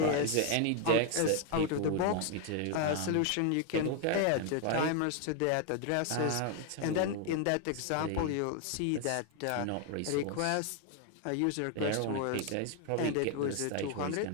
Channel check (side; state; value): both; different; correlation 0.01